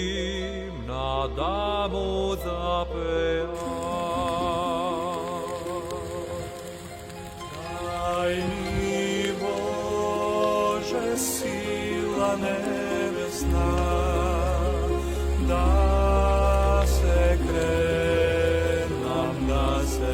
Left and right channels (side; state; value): both; identical; correlation 1.00